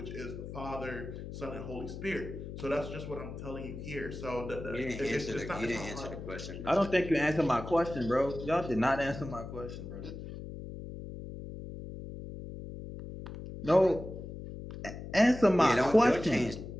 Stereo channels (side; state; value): left; noise; hum, 10 dB below the sound